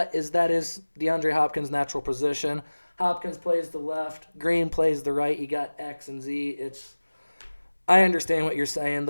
is DeAndre Hopkins' natural position. Hopkins plays the left. Green plays the right. You got X and Z. I understand what you're saying.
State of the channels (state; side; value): inverted; both; correlation -1.00